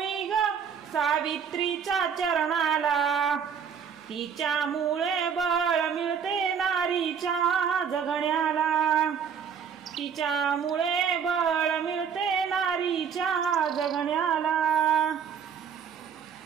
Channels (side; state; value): left; quieter; 7.2 dB